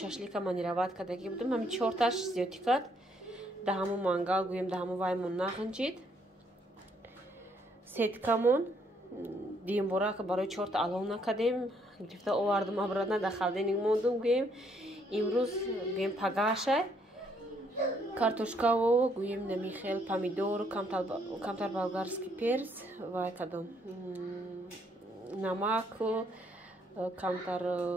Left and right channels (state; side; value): normal; both; correlation 0.70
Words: шашлика манироват кардаги будум. ҳамин 4таш зиёдӣ кард. Да ҳамун мангал гӯем да ҳамун ваймон нағинҷид. Сеткамон диюмбора барои 4та алов накардем. Гирифта овардум обратно да халденник мондум гӯем. Имрӯз гӯем пагашай картошкаву гӯем намихел помидор камтар болгарский перец вай кадом намак камтар